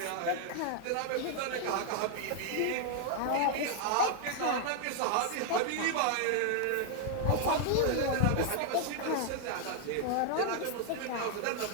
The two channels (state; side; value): different; both; correlation 0.00